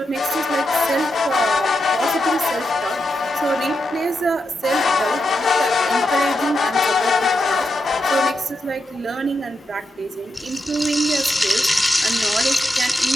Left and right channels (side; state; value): both; normal; correlation 0.86